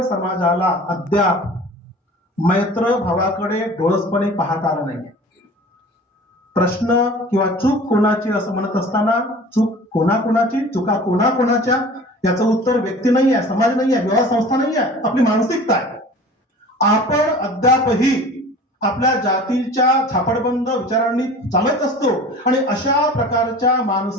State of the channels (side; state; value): both; normal; correlation 0.42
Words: समाजाला अद्याप मैत्र भावाकडे डोळसपणे पाहता आलं नाही. प्रश्न किंवा चूक कोणाची असं म्हणत असताना चूक कोणाकोणाची, चुका कोणाकोणाच्या, याचं उत्तर व्यक्ती नाही आहे, समाज नाही आहे, व्यवहार संस्था नाही आहे, आपली मानसिकता आहे. आपण अद्यापही आपल्या जातीच्या झापडबंद विचारांनी चालत असतो आणि अशा प्रकारच्या